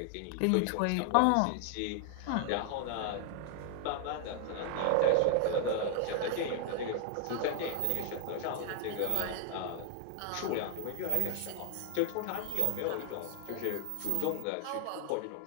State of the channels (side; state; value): both; different; correlation 0.00